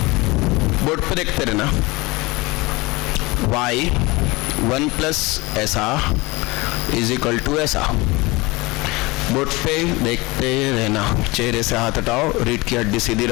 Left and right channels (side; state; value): right; quieter; 23.3 dB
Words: बोर्ड पे देखते रहना। y 1 प्लस ऐसा इज इक्वल टू ऐसा। बोर्ड पे देखते रहना, चेहरे से हाथ हटाओ, रीढ़ की हड्डी सीधी